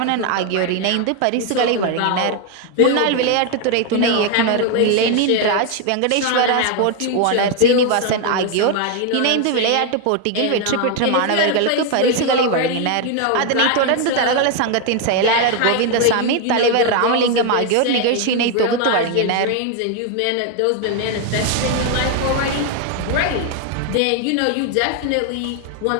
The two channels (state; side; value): different; both; correlation 0.01